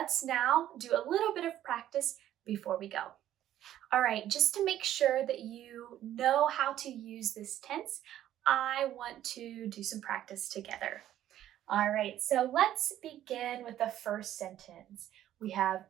now do a little bit of practice before we go. All right, just to make sure that you know how to use this tense, I want to do some practice together. All right, so let's begin with the first sentence. We have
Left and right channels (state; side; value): quieter; left; 12.2 dB